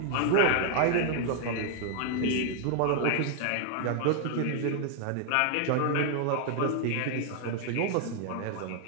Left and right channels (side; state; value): both; different; correlation 0.00